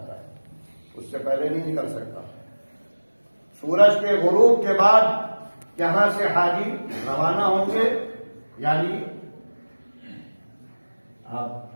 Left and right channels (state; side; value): inverted; both; correlation -1.00